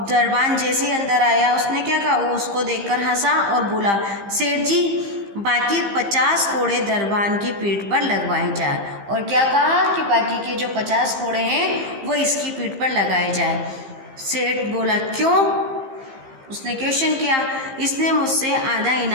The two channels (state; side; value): late; left; 15 ms